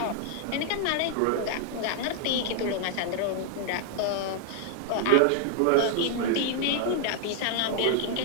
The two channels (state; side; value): different; both; correlation 0.00